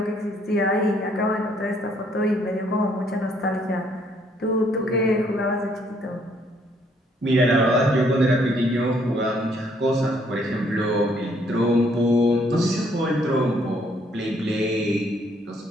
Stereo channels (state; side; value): normal; both; correlation 0.66